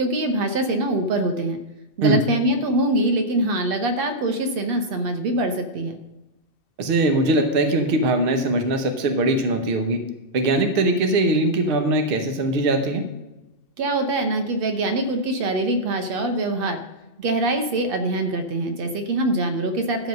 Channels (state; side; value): late; left; 2.6 ms